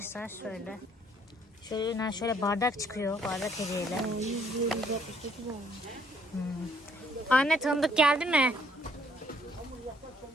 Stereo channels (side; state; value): both; normal; correlation 0.65